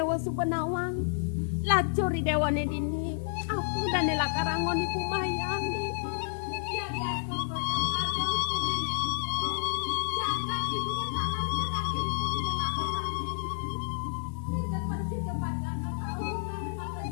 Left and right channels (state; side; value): silent; right; 58 dB below the other